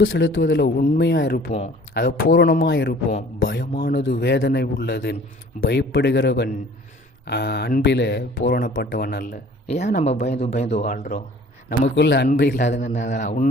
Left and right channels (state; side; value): normal; both; correlation 0.50